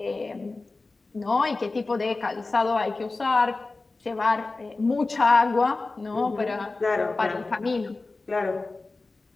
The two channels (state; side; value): quieter; right; 3.5 dB